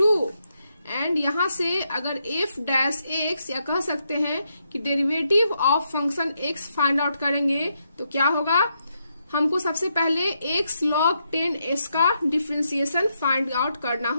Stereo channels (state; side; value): inverted; both; correlation -0.80